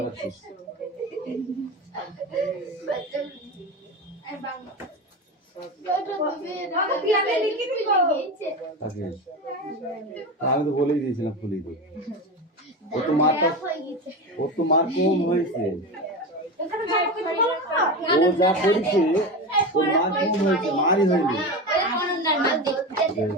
আমি তো বলেই দিয়েছিলাম ফুলি তো, ও তো মার কম হয়েছে, ও যা করেছে ও মার কম হয়েছে, মারই হয়নি।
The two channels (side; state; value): both; normal; correlation 0.23